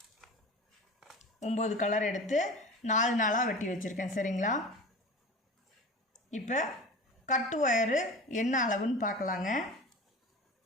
9 கலர் எடுத்து 4 நாளாக வெட்டி வச்சுருக்கேன். சரிங்களா? இப்போ கட்டு ஒயரு என்ன அளவுன்னு பார்க்கலாங்க.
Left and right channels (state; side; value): normal; both; correlation 0.34